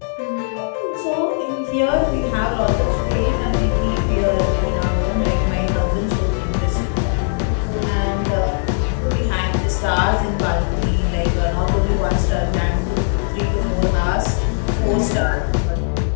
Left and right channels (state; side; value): silent; right; 64 dB below the other